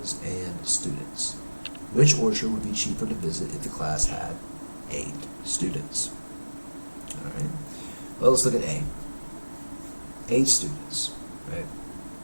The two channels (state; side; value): inverted; both; correlation -1.00